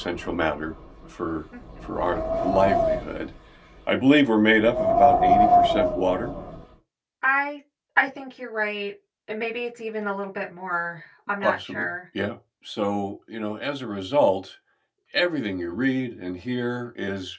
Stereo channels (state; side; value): identical; both; correlation 1.00